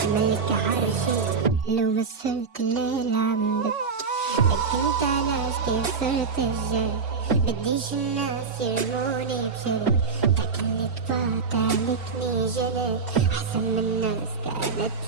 ملك عرشي لو ما صرت الليلة عم ببكي انت ناس كيف صرت الجاي بديش الناس يرموني بشي تاكلني طبعت عليكني جنت احسن من الناس كانت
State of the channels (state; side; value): quieter; left; 5.1 dB